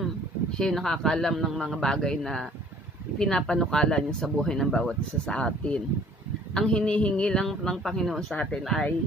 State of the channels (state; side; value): normal; both; correlation 0.55